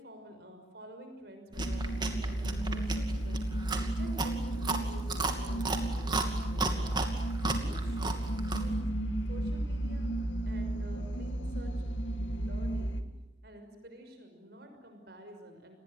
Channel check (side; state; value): both; normal; correlation 0.72